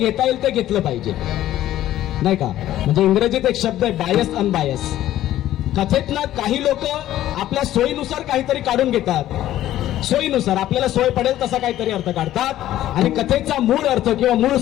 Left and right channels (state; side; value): quieter; right; 13.4 dB